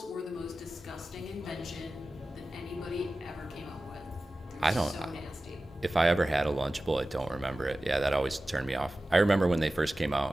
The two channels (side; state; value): both; normal; correlation 0.96